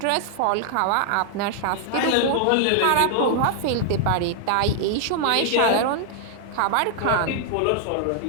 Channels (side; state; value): both; different; correlation 0.00